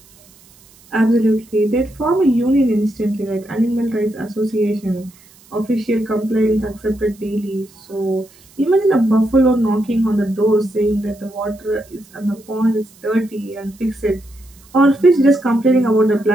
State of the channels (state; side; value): noise; right; hiss, 27 dB below the sound